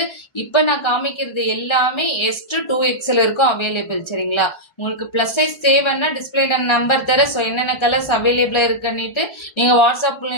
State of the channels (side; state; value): right; late; 1.4 ms